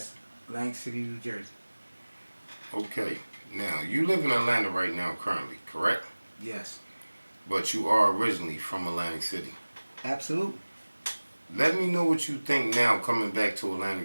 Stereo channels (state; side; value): inverted; both; correlation -1.00